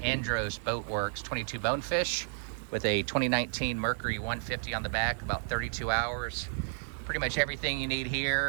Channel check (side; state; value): left; silent; 57 dB below the other